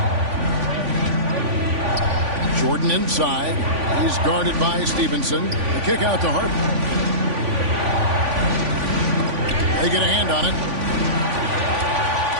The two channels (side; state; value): left; late; 3.5 ms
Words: Jordan inside. He's guarded by Stevenson. The kick out to Harden. They get a hand on it.